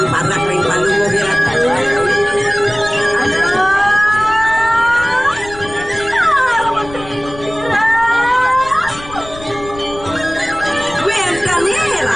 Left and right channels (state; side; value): noise; left; rumble, 16 dB below the sound